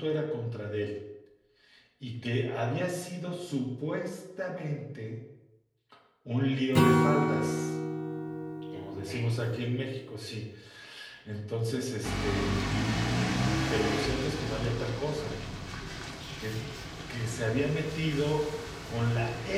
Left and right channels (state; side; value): identical; both; correlation 1.00